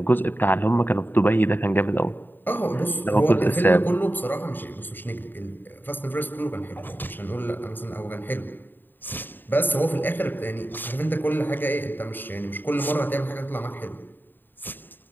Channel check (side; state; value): right; late; 0.093 ms